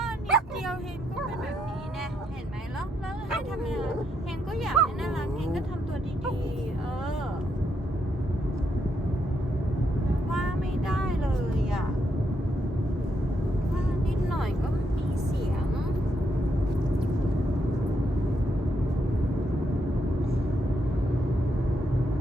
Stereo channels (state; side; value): normal; both; correlation 0.78